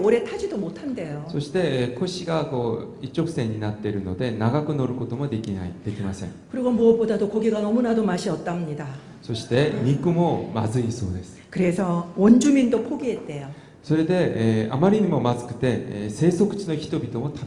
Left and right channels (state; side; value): identical; both; correlation 1.00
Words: 타지도 못한대요. そして腰がこう一直線になっているので長く乗ることもできません。 그리고 무엇보다도 고기가 너무나도 맛이 없답니다. そして肉もまずいそうです。 그래서 원주민도 포기했대요. それで、あまりにもまずくて、生息地の人々も食